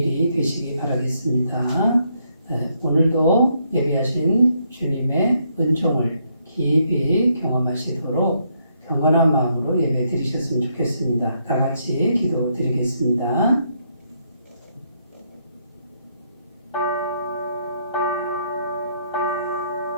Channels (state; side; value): inverted; both; correlation -0.74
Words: 되시기 바라겠습니다. 오늘도 예비하신 주님의 은총을 깊이 경험하시도록 경건한 마음으로 예배 드리셨으면 좋겠습니다. 다 같이 기도 드리겠습니다.